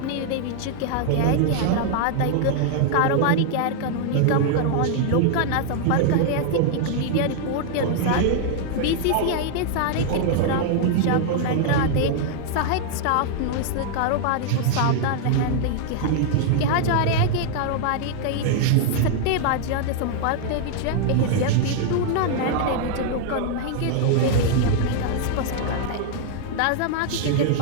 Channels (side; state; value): both; different; correlation -0.01